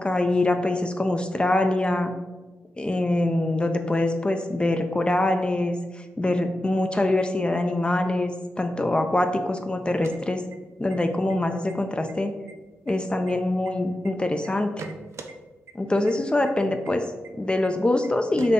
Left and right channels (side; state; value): both; normal; correlation 0.92